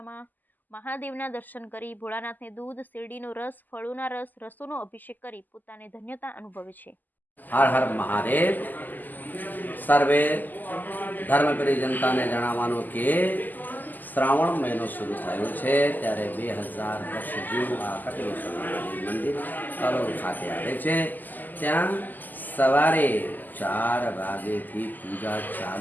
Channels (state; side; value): late; right; 0.085 ms